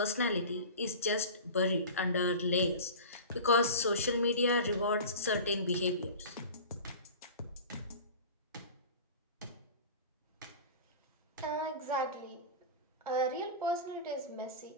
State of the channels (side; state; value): both; inverted; correlation -0.34